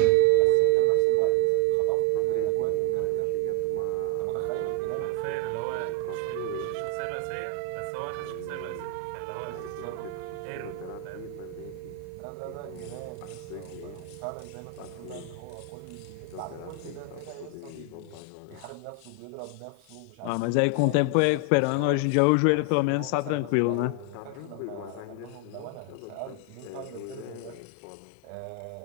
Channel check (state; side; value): different; both; correlation 0.00